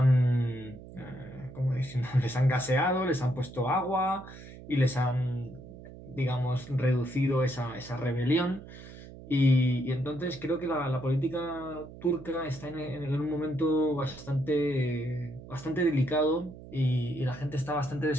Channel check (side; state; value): right; noise; hum, 16 dB below the sound